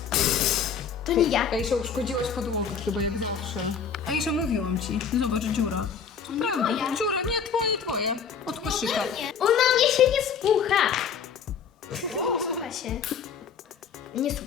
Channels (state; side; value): quieter; right; 6.7 dB